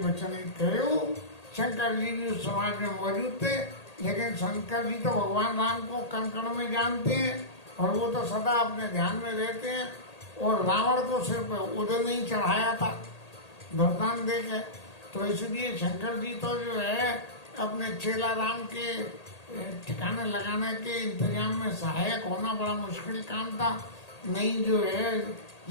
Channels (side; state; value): right; late; 1.8 ms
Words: कहो। शंकर जी भी उस समाज में मौजूद थे, लेकिन शंकर जी तो भगवान राम को कण कण में जानते हैं, और वो तो सदा अपने ध्यान में रहते हैं। और रावण को सिर्फ उधर नहीं चढ़ाया था वरदान दे के, तो इसलिए शंकर जी तो जो है अपने चेला राम के ठिकाने लगाने के इंतजाम में सहायक होना बड़ा मुश्किल काम था। नहीं जो है